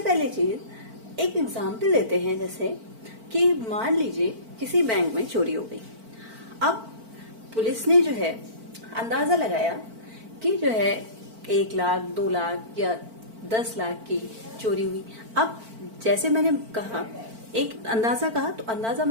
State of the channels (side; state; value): left; late; 4.5 ms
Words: चीज एक एग्जाम्पल लेते हैं, जैसे कि मान लीजिए किसी बैंक में चोरी हो गई। अब पुलिस ने जो है अंदाजा लगाया कि जो है 1 लाख 2 लाख या 10 लाख की चोरी हुई। अब जैसे मैंने कहा एक अंदाजा कहा, तो अंदाजा